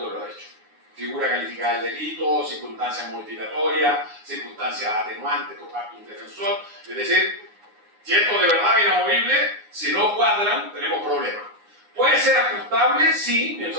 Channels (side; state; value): left; late; 9.7 ms